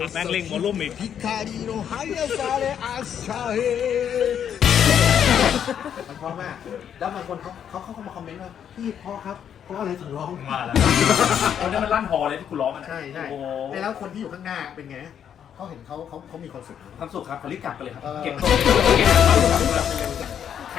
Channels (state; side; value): quieter; right; 8.8 dB